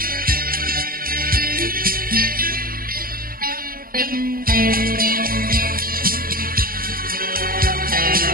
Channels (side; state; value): left; late; 0.42 ms